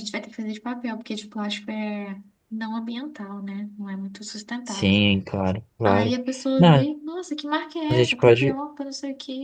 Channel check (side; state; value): both; identical; correlation 1.00